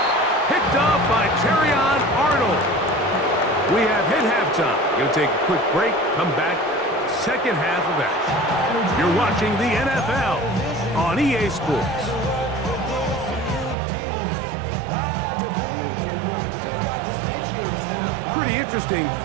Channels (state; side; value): drops out; left; at 13.8 s